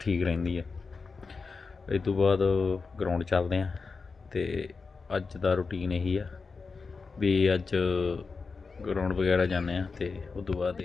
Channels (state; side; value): quieter; right; 4.6 dB